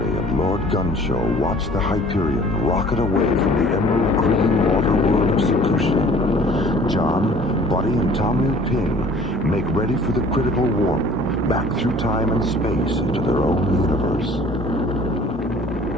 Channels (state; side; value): normal; both; correlation 0.50